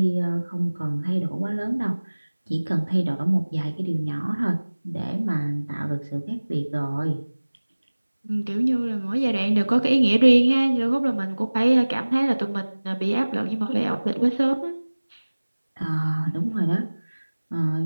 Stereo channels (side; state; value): both; inverted; correlation -1.00